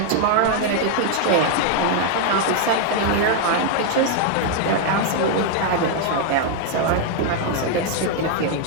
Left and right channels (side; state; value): both; different; correlation 0.00